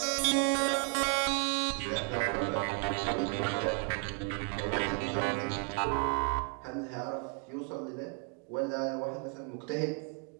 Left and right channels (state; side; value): quieter; left; 36.4 dB